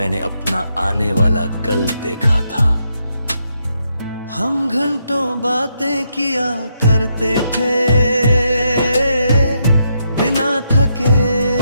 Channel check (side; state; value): both; inverted; correlation -0.79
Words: अपना आने वाला कल देखा था। हम घंटों बातें किया करते थे बिना थके